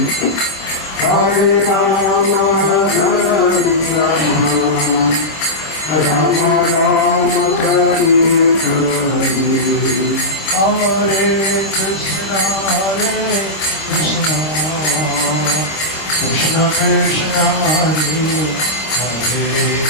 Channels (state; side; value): late; right; 26 ms